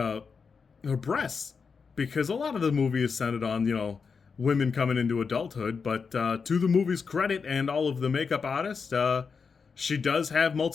her breasts, because a lot of the movie is centered on, women coming into adulthood. But to the movie's credit and all of the makeup artists, she does have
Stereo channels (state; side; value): quieter; right; 5.5 dB